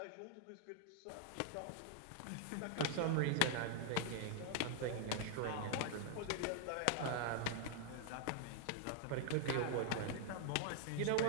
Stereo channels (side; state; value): both; different; correlation -0.01